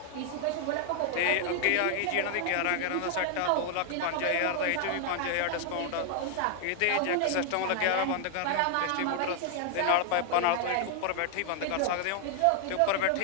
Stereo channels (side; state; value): both; different; correlation 0.00